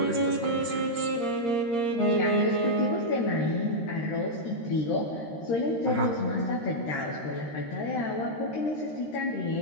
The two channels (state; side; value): late; right; 13 ms